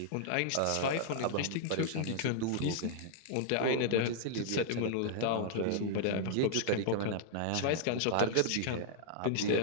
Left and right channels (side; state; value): both; different; correlation -0.01